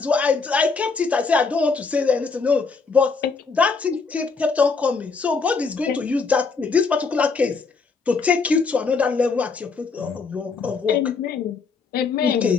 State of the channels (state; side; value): quieter; right; 4.7 dB